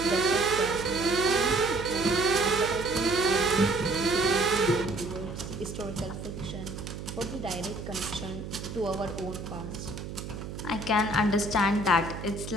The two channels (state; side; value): noise; right; hum, 9 dB below the sound